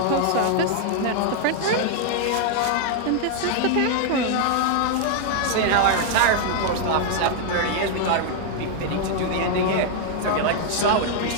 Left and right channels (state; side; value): different; both; correlation 0.00